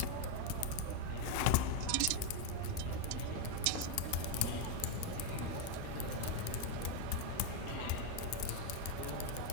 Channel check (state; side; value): different; both; correlation 0.02